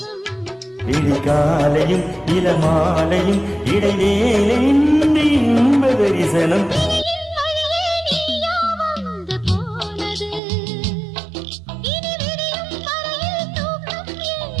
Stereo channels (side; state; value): left; drops out; at 10.4 s